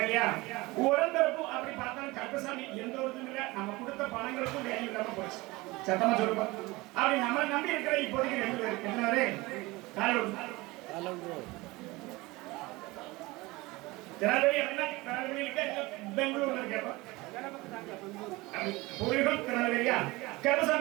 உடம்புக்கும் அப்படி பார்த்தாலும் கருப்பசாமி எந்த ஒரு இல்லை நம்ம கொடுத்த பணங்களுக்கும் வேல்யூ இல்லாம போச்சு சத்தமா சொல்லுவோம் அப்படி நம்மளை நம்பி இருக்கிற இப்போதைக்கு 2 பேர் என்னவரே பெங்களூர்ல இருக்க திருநெல்வேலியா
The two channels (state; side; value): quieter; left; 21.8 dB